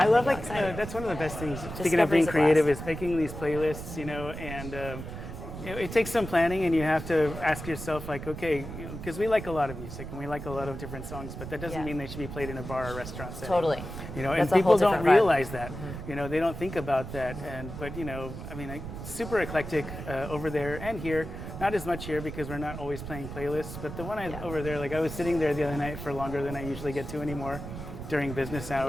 love that's one of the best things. Speaking of being creative, is making these playlists, and it takes some planning, and you have to ask yourself, like, okay, because we like a lot of music and we like a lot of different songs, but that doesn't Yeah. mean they should be played in a bar or restaurant setting. Totally. And That's a people whole don't different vibe. realize that. They don't think about that, but super eclectic over there and here. Not as much here because we're not always playing playlists, but the one over there, like I was sitting there the other night for longer than I usually get to anymore during business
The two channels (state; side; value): noise; right; rumble, 9 dB below the sound